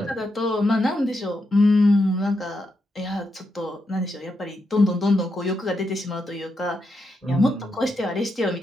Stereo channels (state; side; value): normal; both; correlation 0.83